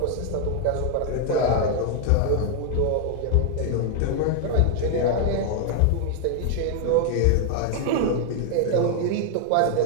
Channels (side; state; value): both; different; correlation 0.00